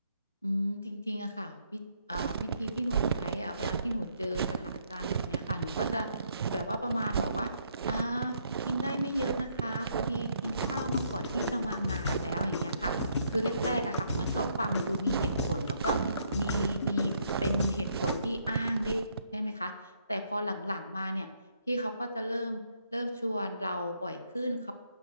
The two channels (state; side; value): inverted; both; correlation -0.71